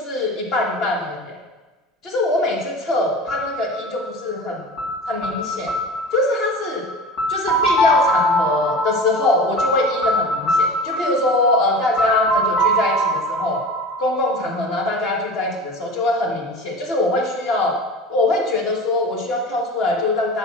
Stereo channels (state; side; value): normal; both; correlation 0.35